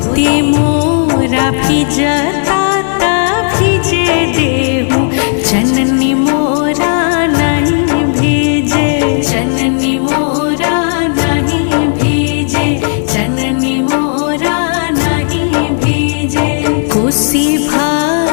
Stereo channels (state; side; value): silent; right; digital silence